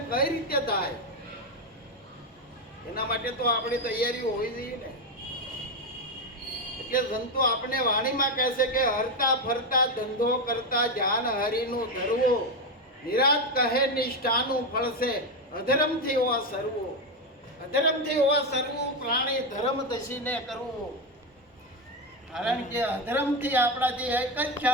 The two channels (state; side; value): normal; both; correlation 0.10